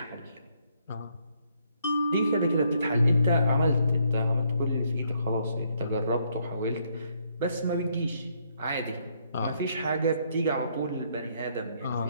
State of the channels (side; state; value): both; inverted; correlation -0.71